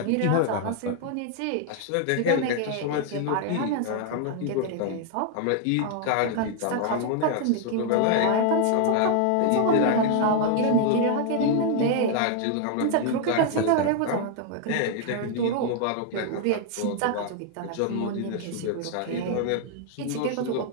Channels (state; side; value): different; both; correlation 0.00